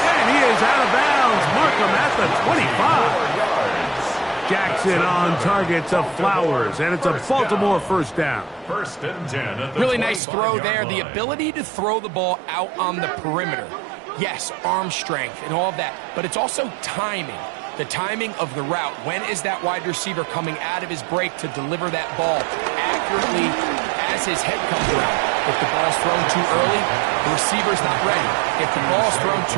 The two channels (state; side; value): drops out; left; at 10.2 s